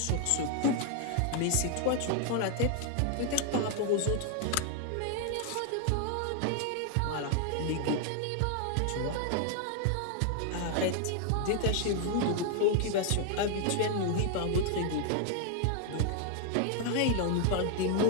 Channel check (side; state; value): both; different; correlation 0.00